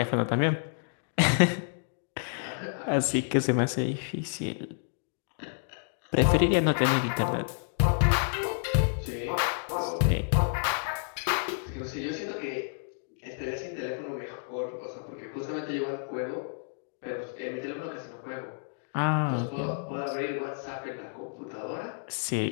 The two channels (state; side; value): silent; right; digital silence